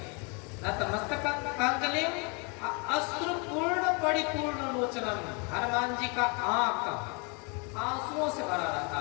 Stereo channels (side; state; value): right; quieter; 32.9 dB